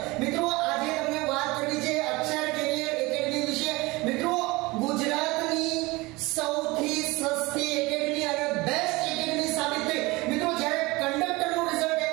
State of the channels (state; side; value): quieter; left; 22.6 dB